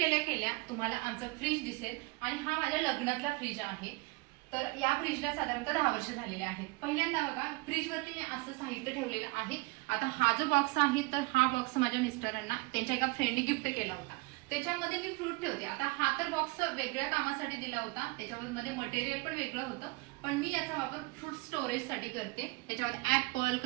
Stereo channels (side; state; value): left; quieter; 25.8 dB